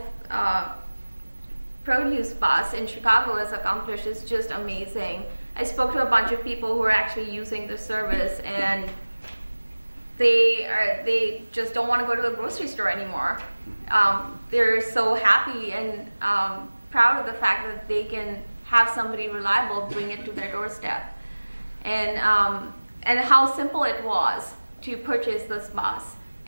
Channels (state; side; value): inverted; both; correlation -1.00